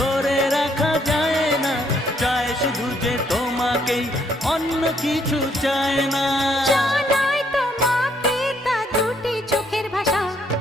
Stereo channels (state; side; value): normal; both; correlation 0.70